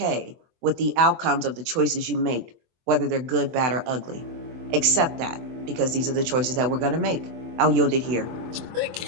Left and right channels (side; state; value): left; late; 23 ms